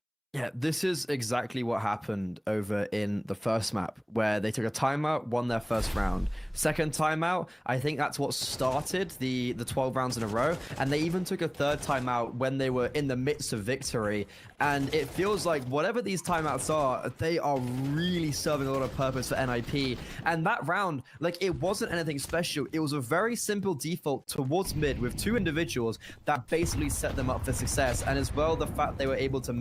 Yeah, this is exactly what happened over in the first map, where they took a timeout, won their first round. Second timeout, I think that's what started the 12 rounds in a row, and they even took a third timeout when they were in the midst of victory. And it feels like whatever these timeouts are, they are really serving a lot of purpose for NIP. And that round, like, it wasn't anything special. It was a very simple default towards mid with 2 individuals that basically set them up for success. And as well, the fact they were able to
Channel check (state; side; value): identical; both; correlation 1.00